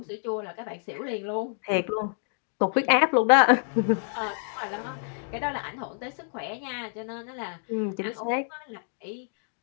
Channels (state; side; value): silent; right; 59 dB below the other